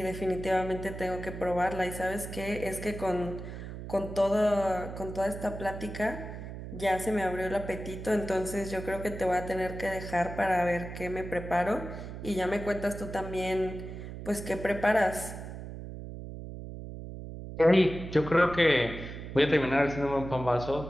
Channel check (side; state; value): right; noise; hum, 9 dB below the sound